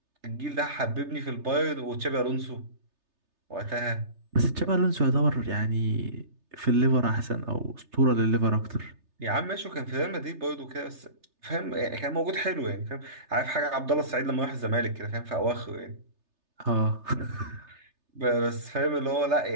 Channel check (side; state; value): left; late; 3.3 ms